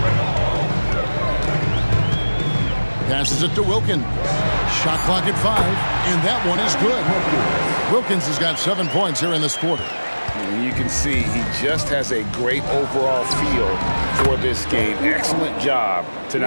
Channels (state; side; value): inverted; both; correlation -1.00